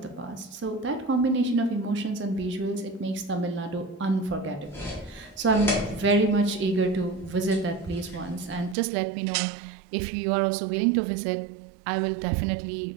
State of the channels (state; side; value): drops out; left; at 8.8 s